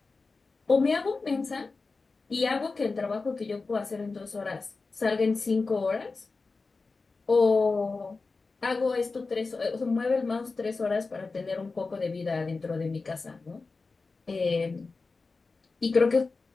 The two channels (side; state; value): right; quieter; 4.0 dB